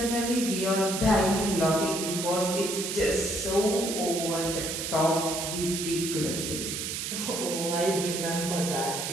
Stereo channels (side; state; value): right; noise; hiss, 4 dB below the sound